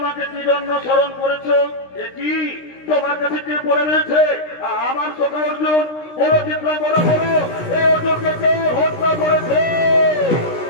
কি জন্য স্মরণ করেছো? এ কি তোমার কাছে কে পড়ে রয়েছে? আমার সখা অর্জুন। বলো চিত্রাঙ্গদা, বলো এই অর্জুনকে কে হত্যা করেছে?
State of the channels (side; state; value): right; late; 16 ms